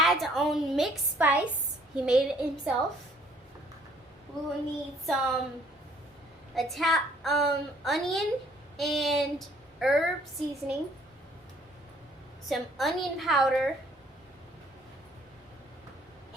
own mixed spice, he made it himself. We will need some onion and herb seasoning, some onion powder,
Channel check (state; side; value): normal; both; correlation 0.60